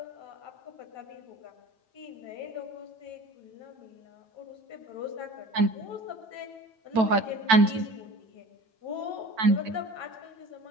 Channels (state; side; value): late; left; 9.0 ms